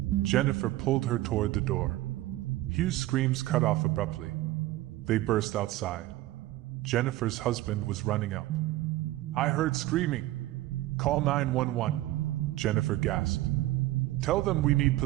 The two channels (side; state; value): left; quieter; 16.6 dB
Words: Jennifer pulled her toward the door. Hughes' screams cut off abruptly. They burst outside. Jennifer's husband was running up. I heard screaming. Call 911, Jennifer gasped. Tell them we need